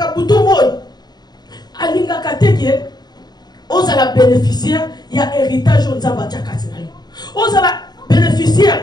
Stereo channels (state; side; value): late; right; 0.20 ms